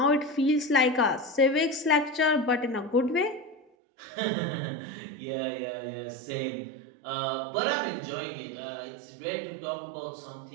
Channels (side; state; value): left; drops out; at 3.6 s